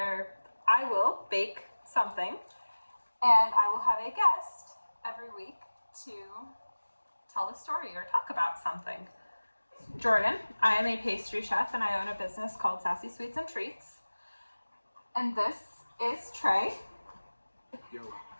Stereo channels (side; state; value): both; inverted; correlation -1.00